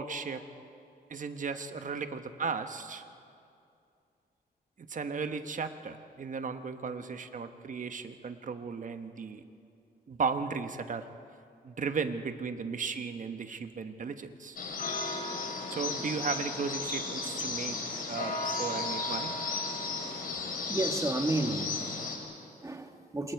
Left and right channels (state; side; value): normal; both; correlation 0.29